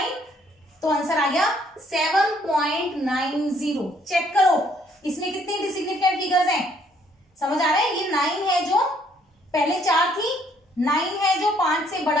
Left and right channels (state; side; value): normal; both; correlation 0.65